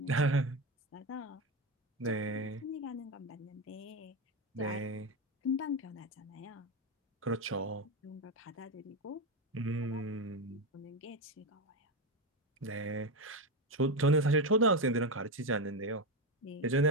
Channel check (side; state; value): both; normal; correlation 0.12